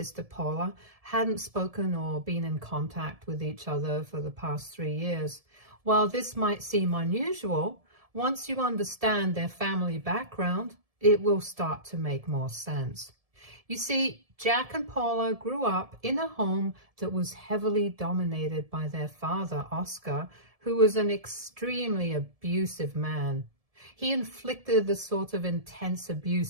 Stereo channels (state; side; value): late; left; 1.7 ms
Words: Paula hadn't spoken or been in contact with each other for the past 3 years. While this might seem unusual, once you understand their family background, it will start to make more sense. You see, Jack and Paula grew up in a home that was heavily dominated by their father, Oscar, who was an extremely abusive man. He inflicted the sort of intense